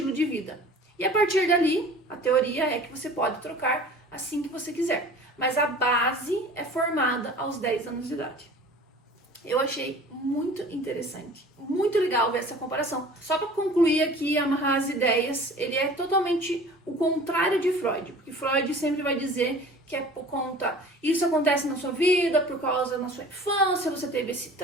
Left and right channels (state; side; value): normal; both; correlation 0.44